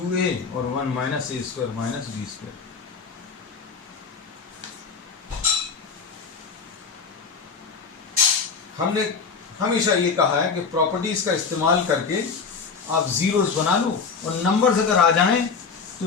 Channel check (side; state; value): right; quieter; 5.3 dB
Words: और 1 minus a square minus b square. हमने हमेशा ये कहा है कि प्रॉपर्टीज का इस्तेमाल करके आप जीरोस बना लो, और नंबर्स अगर आ जाएं